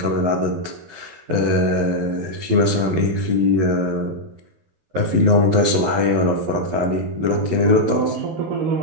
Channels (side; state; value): left; late; 11 ms